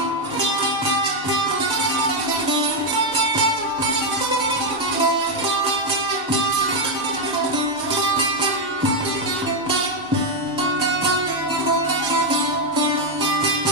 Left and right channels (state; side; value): normal; both; correlation 0.03